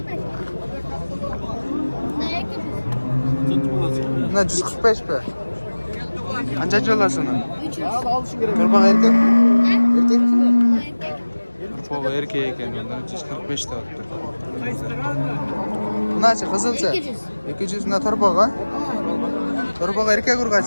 Buna 145 be. Qanchachi olasizmi? 300. Turpoq erkak? Erkak? Turpoq erkak ekan, undan 145 ta olibdi. Bunachi qizilcha? 200. 200 na turpoq a? Turpoq erkak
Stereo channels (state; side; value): inverted; both; correlation -1.00